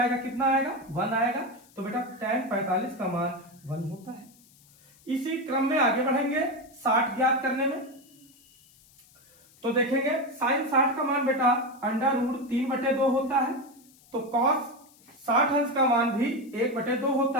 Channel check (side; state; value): left; noise; hiss, 28 dB below the sound